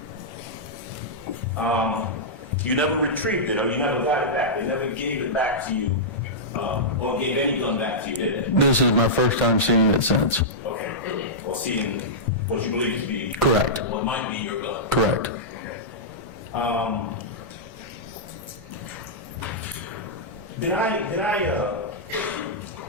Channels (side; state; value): both; normal; correlation -0.12